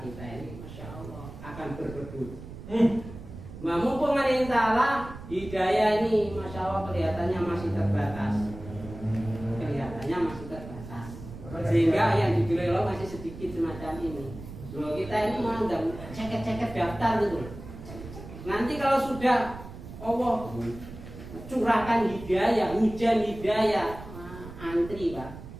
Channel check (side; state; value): right; noise; rumble, 13 dB below the sound